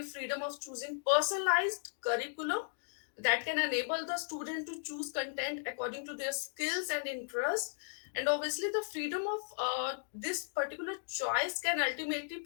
freedom of choosing personalized curriculum that can enable the student to choose content according to their skills and interests. And obviously the freedom of this particular choice can ultimately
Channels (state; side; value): silent; right; digital silence